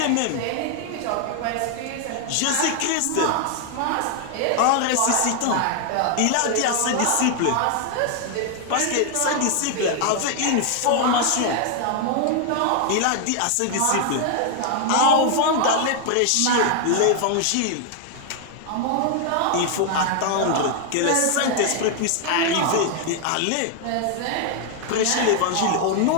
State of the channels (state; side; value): different; both; correlation 0.00